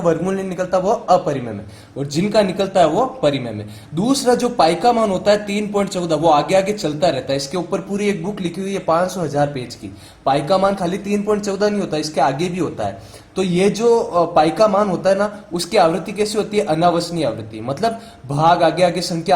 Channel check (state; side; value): identical; both; correlation 1.00